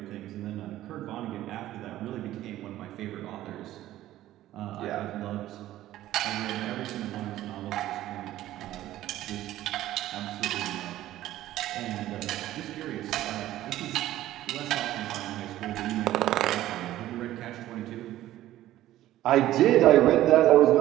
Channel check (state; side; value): quieter; left; 14.2 dB